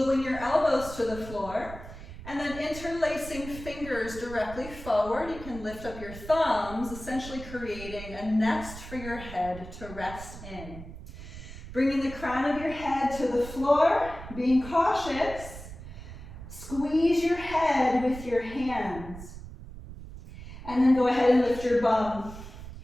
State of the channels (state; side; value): noise; right; rumble, 13 dB below the sound